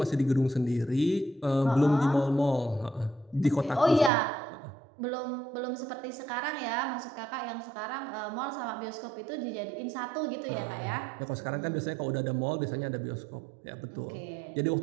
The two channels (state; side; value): drops out; left; at 4.1 s